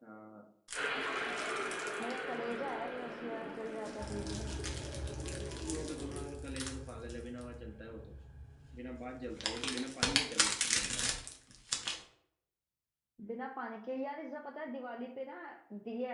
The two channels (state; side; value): identical; both; correlation 1.00